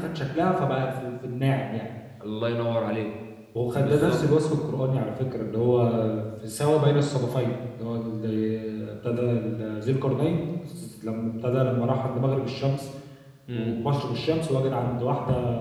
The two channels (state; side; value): identical; both; correlation 1.00